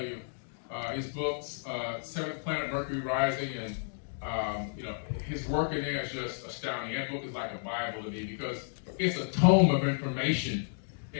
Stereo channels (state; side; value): silent; right; digital silence